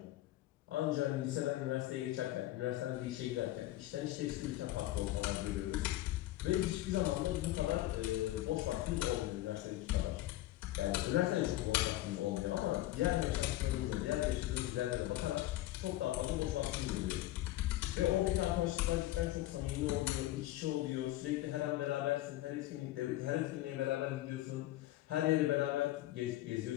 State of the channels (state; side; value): quieter; right; 15.8 dB